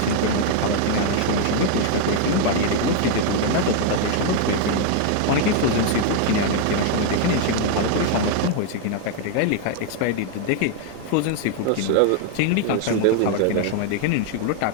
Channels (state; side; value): different; both; correlation 0.00